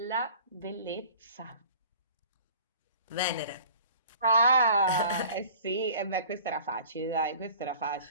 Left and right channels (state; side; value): inverted; both; correlation -0.47